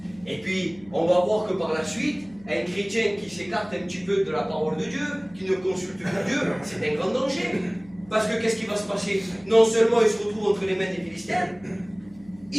Et puis, on va voir que par la suite, un chrétien qui s'écarte un petit peu de la parole de Dieu, qui ne consulte pas Dieu, c'est un grand danger. Parce que qu'est-ce qui va se passer? Non seulement il se retrouve entre les mains des Philistins,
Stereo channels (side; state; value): left; noise; hum, 25 dB below the sound